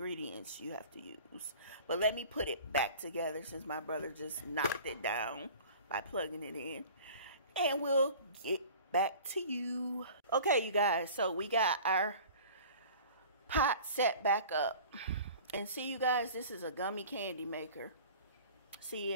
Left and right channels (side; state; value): both; inverted; correlation -0.43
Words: you have to use. But let me put it back together since my brother just knocked it down by plugging it in. And we'll get back to you. Okay, you guys. So we got our pot set back up. And see, you guys, this is a gummy candy maker. See,